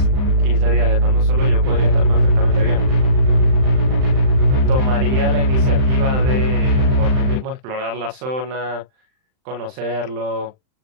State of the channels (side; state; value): left; late; 39 ms